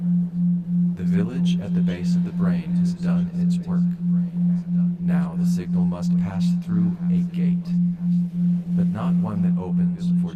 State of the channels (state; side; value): identical; both; correlation 1.00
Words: The village at the base of the brain has done its work. Now the signal must pass through a gate, but not one that opens for